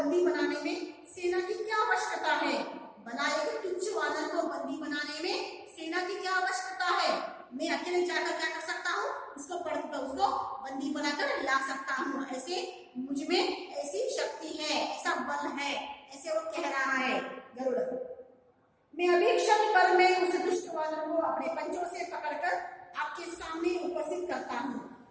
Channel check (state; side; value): identical; both; correlation 1.00